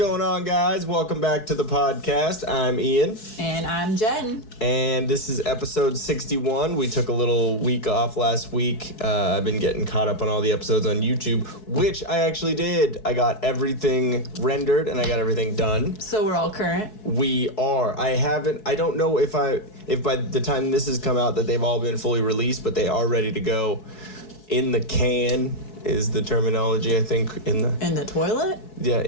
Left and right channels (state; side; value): late; right; 4.7 ms